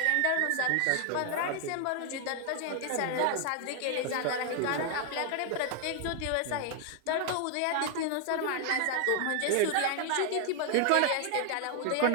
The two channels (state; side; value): different; both; correlation 0.00